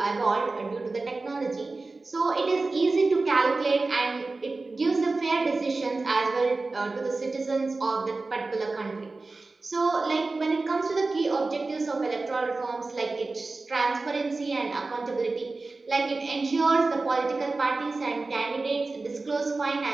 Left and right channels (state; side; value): quieter; left; 3.5 dB